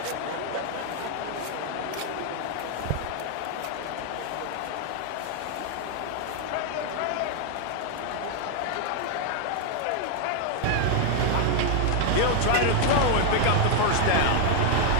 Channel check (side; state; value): both; different; correlation 0.00